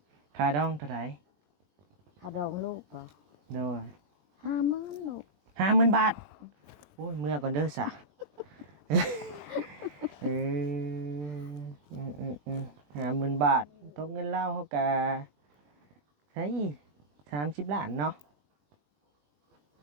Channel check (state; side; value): late; left; 20 ms